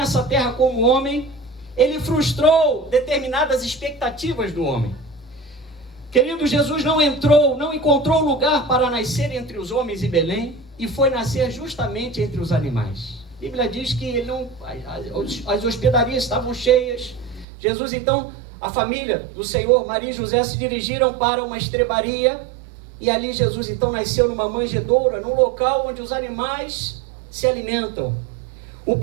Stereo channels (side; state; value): left; drops out; at 17.4 s